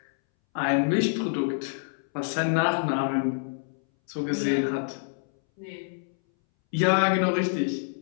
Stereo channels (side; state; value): right; silent; 60 dB below the other